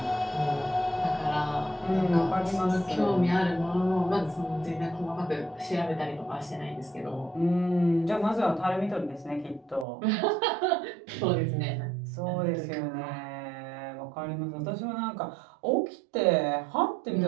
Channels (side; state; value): left; drops out; at 9.9 s